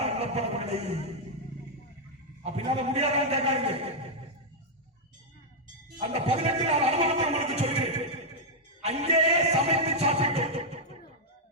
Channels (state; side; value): normal; both; correlation -0.03